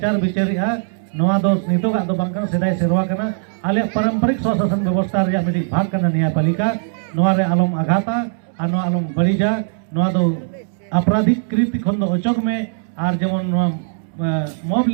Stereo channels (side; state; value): left; silent; 66 dB below the other